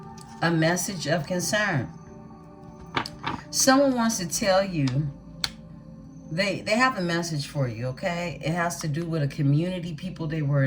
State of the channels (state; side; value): identical; both; correlation 1.00